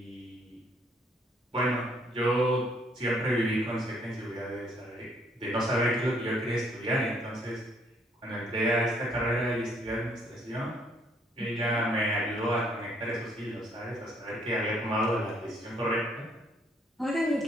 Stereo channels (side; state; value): both; normal; correlation 0.66